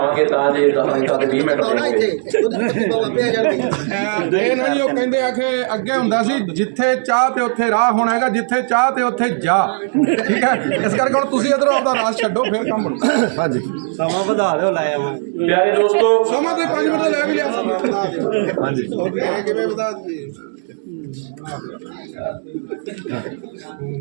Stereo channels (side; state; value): left; silent; digital silence